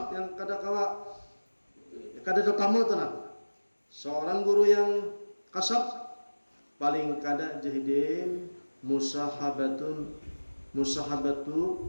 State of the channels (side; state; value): both; inverted; correlation -1.00